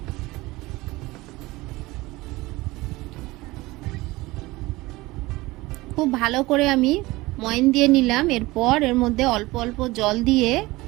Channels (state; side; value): quieter; left; 20.4 dB